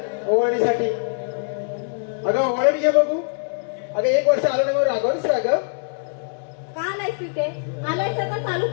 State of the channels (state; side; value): silent; right; 64 dB below the other